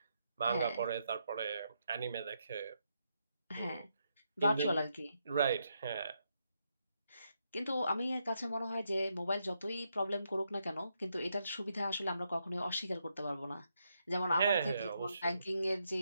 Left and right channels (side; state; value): both; inverted; correlation -0.80